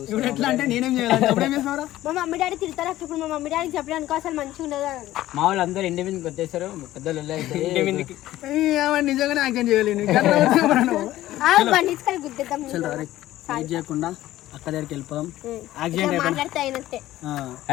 ఇప్పుడు ఎట్లా అంటే నేనేం చేయాలి? అప్పుడేం చేస్తున్నారా? మా మమ్మీ డాడీ తిడతారు అక్క. ఇప్పుడు మా మమ్మీ డాడీకి చెప్పడానికి అసలు మంచిగా ఉండదు. మా వాళ్ళు అందరూ ఇంటి మీదకి వచ్చేసారు. పెద్దలు నిజంగానే యాక్షన్ చేయలేను. బండిస్కల్ గుద్దేద్దాం. వెయిట్ చేయకుండా అక్క దగ్గరికి వెళ్ళిపోదాం. మాట్లాడితే అయినట్టే.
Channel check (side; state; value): right; quieter; 14.9 dB